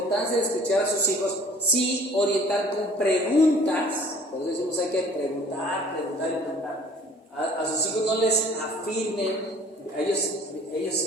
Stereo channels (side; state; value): both; normal; correlation 0.51